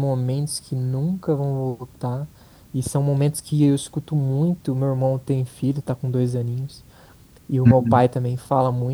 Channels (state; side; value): identical; both; correlation 1.00